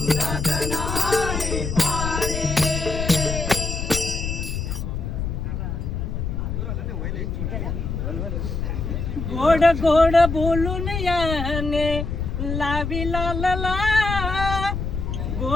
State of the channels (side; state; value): left; noise; rumble, 3 dB below the sound